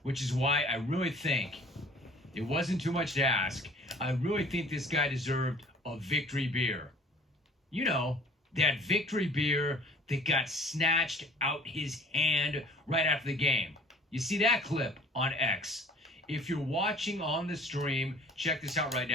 which is why I really think it wasn't too much to ask. I really think this guy deserved a victory beer. You know, that victory beer that got snatched out his hand right after the game. You see that clip on X. If you're watching on the stream, check this out right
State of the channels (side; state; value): both; normal; correlation 0.50